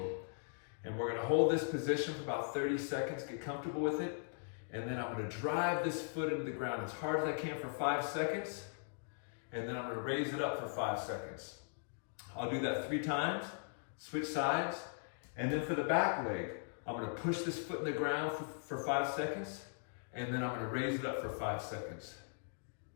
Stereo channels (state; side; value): silent; right; digital silence